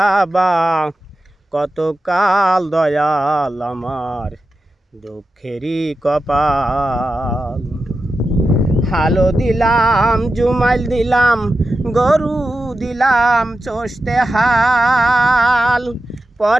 কত কাল, দয়াল আমার দুঃখেরই কপাল। হালো দিলাম জুমাইল দিলাম গরু দিলাম চষতে হাল,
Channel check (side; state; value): both; normal; correlation 0.91